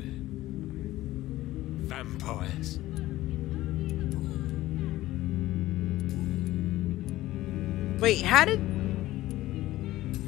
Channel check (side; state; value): right; quieter; 16.3 dB